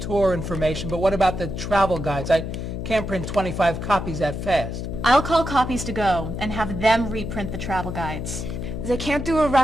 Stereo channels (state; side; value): noise; left; hum, 5 dB below the sound